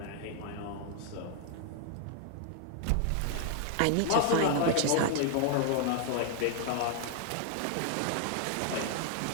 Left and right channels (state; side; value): different; both; correlation 0.00